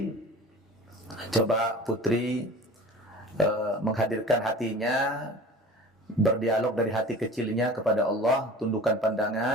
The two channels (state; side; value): normal; both; correlation 0.39